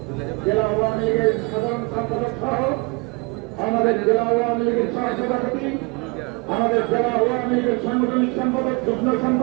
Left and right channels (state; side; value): quieter; left; 28.8 dB